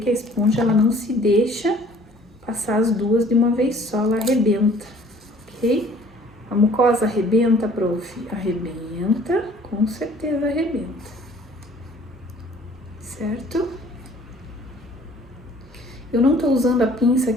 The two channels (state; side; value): normal; both; correlation 0.54